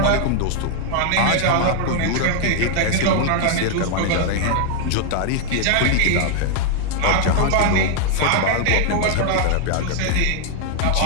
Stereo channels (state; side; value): different; both; correlation 0.00